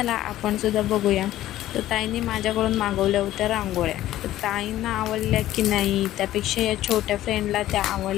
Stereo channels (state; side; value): quieter; right; 14.1 dB